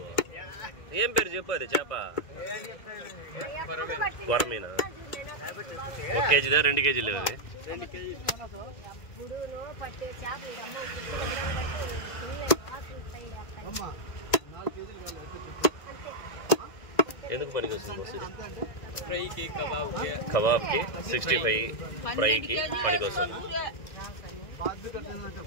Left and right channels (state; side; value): late; right; 2.0 ms